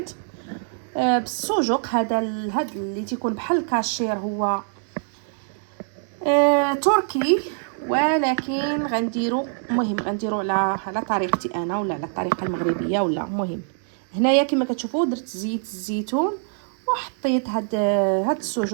بالسجق. هذا اللي تيكون بحال الكاشير هو تركي، ولكن غنديرو على طريقتي انا ولا على الطريقه المغربيه ولا مهم. هنايا كما كتشوفوا درت زيت الزيتون وحطيت هاد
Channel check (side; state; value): left; silent; 63 dB below the other